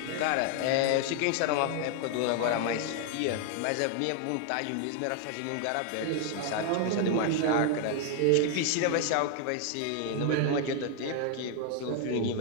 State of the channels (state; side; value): different; both; correlation 0.00